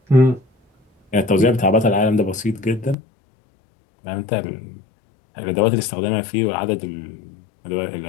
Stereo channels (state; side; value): drops out; right; at 3.0 s